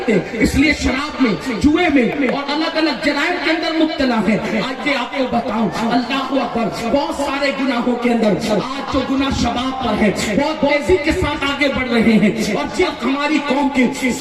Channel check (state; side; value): identical; both; correlation 1.00